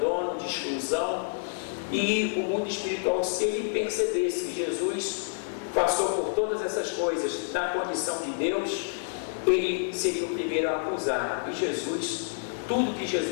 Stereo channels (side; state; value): right; silent; 59 dB below the other